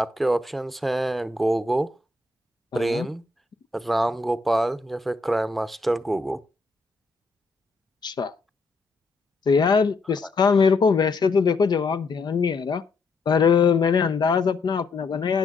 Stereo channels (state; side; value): quieter; right; 3.6 dB